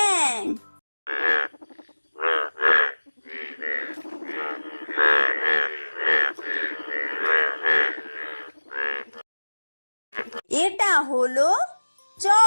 এটা হলো চ।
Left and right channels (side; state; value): both; inverted; correlation -1.00